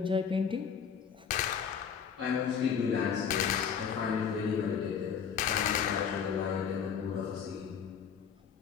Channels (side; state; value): right; quieter; 7.2 dB